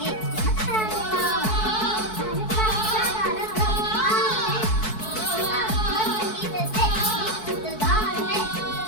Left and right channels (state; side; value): late; right; 4.6 ms